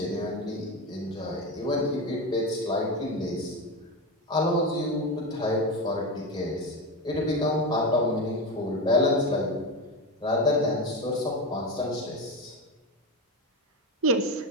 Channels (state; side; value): normal; both; correlation 0.17